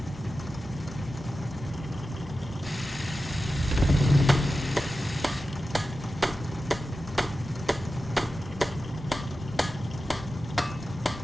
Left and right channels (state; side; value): normal; both; correlation 0.93